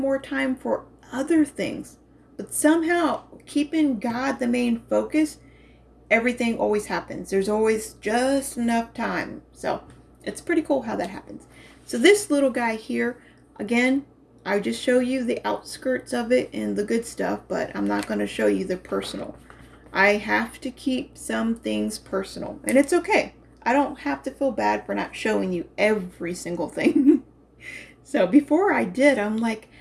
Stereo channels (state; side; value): identical; both; correlation 1.00